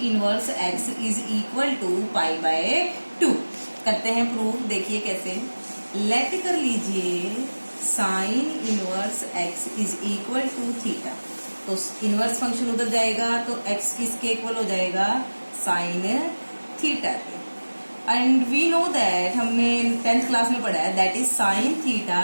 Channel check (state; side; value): inverted; both; correlation -1.00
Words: inverse x is equal to pi by 2। करते हैं प्रूव। देखिए कैसे, लेट कर लीजिए sine inverse x is equal to theta. तो इनवर्स फंक्शन उधर जाएगा तो एक्स किसके इक्वल हो जाएगा, साइन थीटा के। एंड वी नो दैट हमने 10th क्लास में पढ़ा है that is sine theta